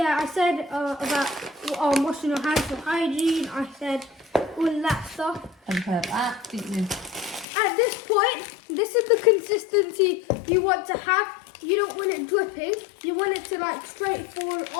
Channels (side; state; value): right; drops out; at 7.5 s